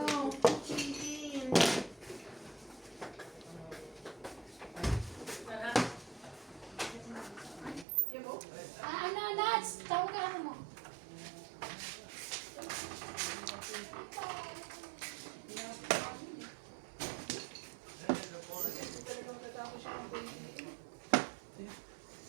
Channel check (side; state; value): left; drops out; at 7.9 s